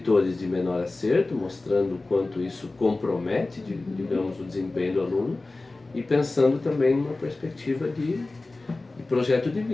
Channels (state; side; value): quieter; right; 3.2 dB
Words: de menor acerto, mostrando o quanto isso compromete, digamos, o desempenho do aluno, e pensando também numa perspectiva de projeto de